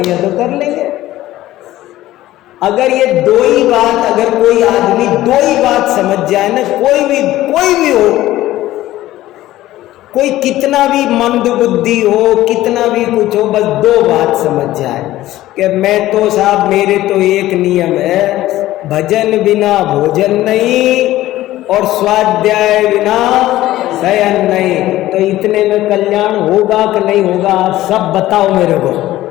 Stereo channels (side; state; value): right; quieter; 15.4 dB